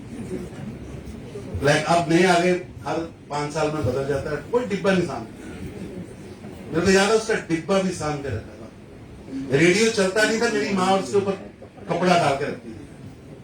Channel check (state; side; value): identical; both; correlation 1.00